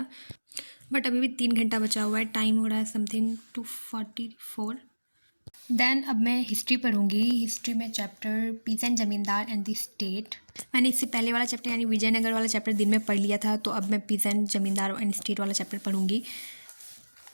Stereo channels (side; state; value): both; inverted; correlation -1.00